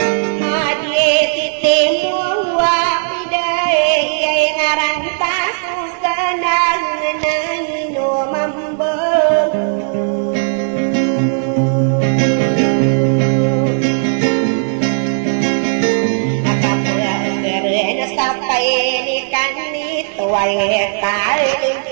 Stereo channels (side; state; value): left; silent; 60 dB below the other